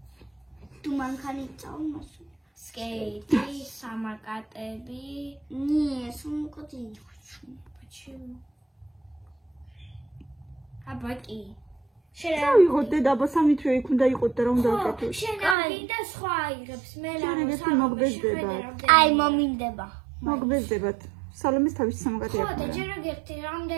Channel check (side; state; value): left; drops out; at 15.6 s